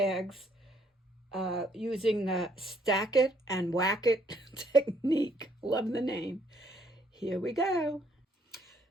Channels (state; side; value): normal; both; correlation 0.67